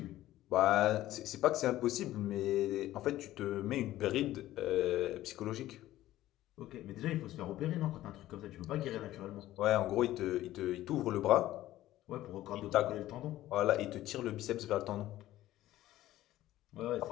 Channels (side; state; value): right; quieter; 14.8 dB